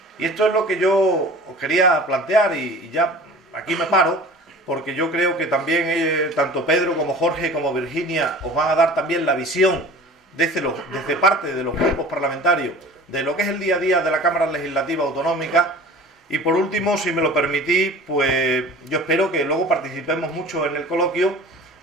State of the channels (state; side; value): normal; both; correlation 0.41